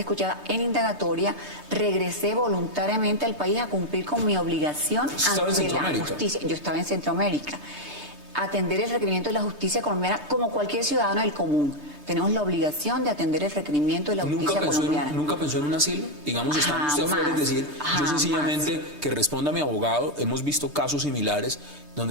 en indagatoria, regresé voluntariamente al país a cumplir con mi obligación ante la justicia. Yo estaba en Centroamérica. Atender el requerimiento de la justicia colombiana como cualquier ciudadano del común. Tenemos la obligación de atender el requerimiento de la justicia colombiana. ¿Nunca pensó en un asilo? Digamos, está usted afuera, es decir, yo sencillamente que responda a mi abogado, hemos visto casos similares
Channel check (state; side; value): late; right; 3.2 ms